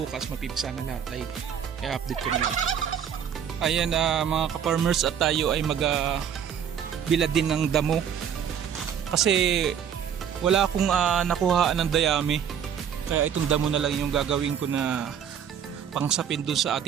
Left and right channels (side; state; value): left; quieter; 8.4 dB